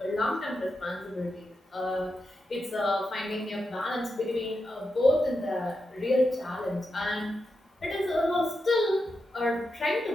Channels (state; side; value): normal; both; correlation 0.87